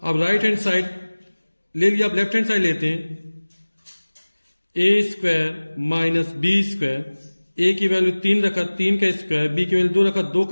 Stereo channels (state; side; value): inverted; both; correlation -1.00